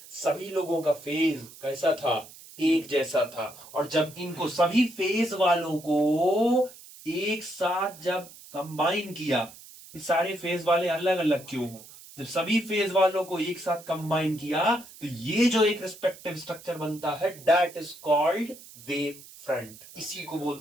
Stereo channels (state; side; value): noise; right; hiss, 19 dB below the sound